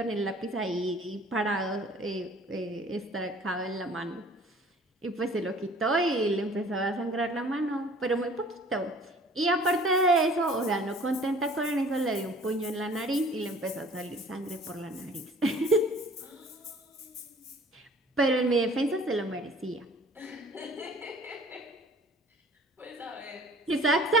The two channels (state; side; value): normal; both; correlation 0.50